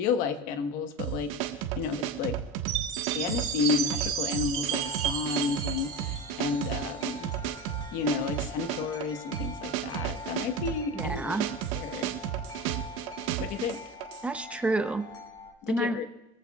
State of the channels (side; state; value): both; normal; correlation 0.26